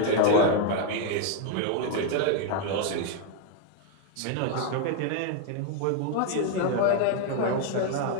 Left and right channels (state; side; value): different; both; correlation 0.00